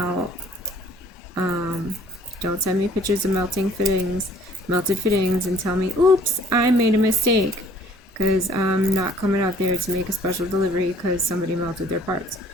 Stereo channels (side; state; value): both; normal; correlation 0.57